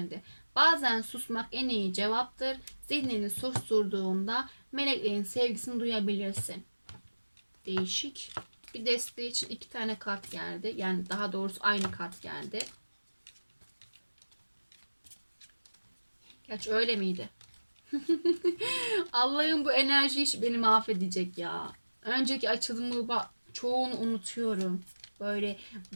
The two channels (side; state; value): both; inverted; correlation -1.00